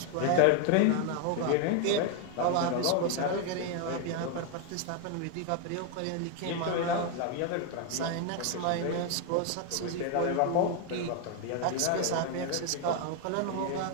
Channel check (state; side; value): different; both; correlation 0.01